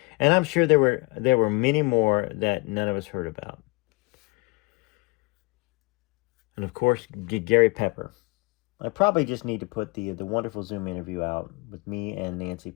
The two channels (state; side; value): quieter; right; 26.3 dB